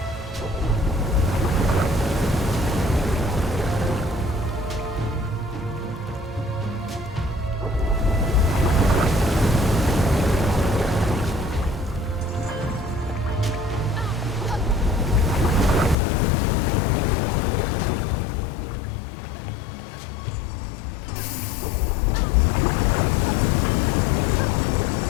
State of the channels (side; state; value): right; drops out; at 16.0 s